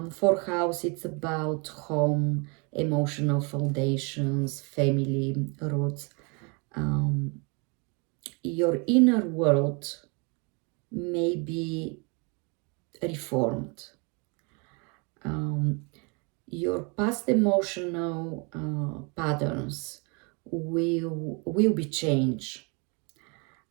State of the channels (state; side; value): quieter; left; 32.3 dB